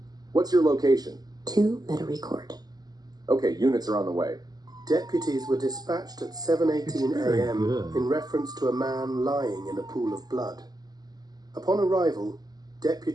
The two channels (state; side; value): late; left; 0.19 ms